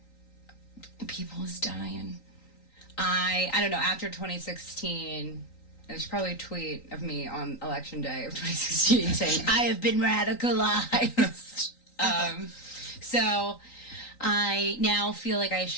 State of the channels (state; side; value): late; right; 3.9 ms